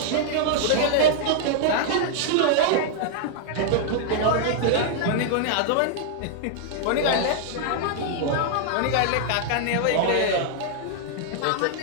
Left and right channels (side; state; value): both; different; correlation -0.01